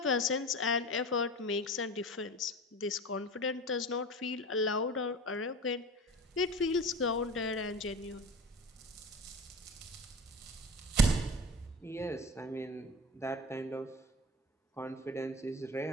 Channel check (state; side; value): normal; both; correlation 0.33